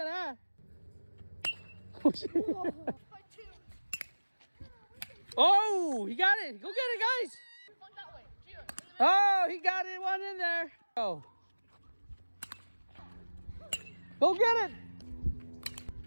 that. Oh, he got it. Go get it, guys. Oh, he got it. One in there. Oh. Go get it.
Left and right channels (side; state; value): both; inverted; correlation -1.00